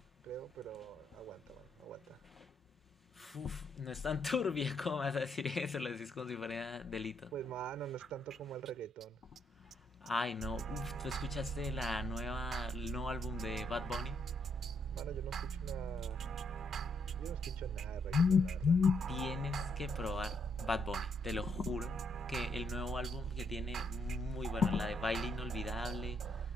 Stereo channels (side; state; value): both; normal; correlation 0.75